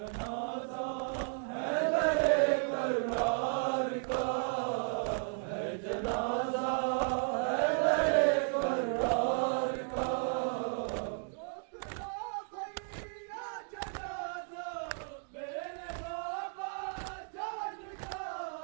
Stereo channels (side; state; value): left; silent; 55 dB below the other